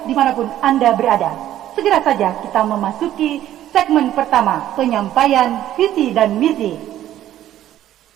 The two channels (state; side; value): quieter; left; 12.5 dB